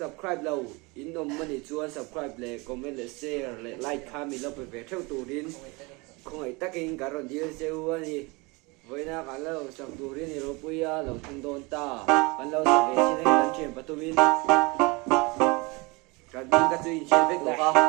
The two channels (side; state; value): left; quieter; 26.6 dB